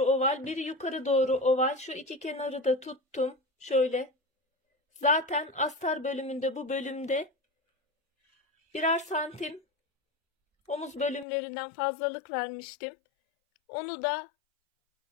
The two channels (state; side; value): drops out; right; at 11.2 s